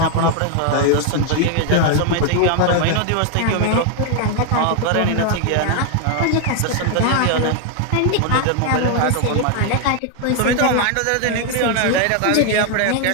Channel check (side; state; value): both; different; correlation 0.00